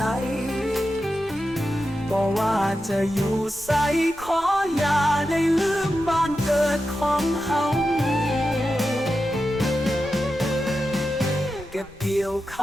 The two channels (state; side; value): noise; left; rumble, 23 dB below the sound